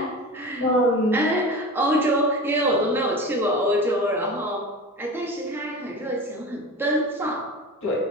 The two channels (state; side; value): normal; both; correlation 0.31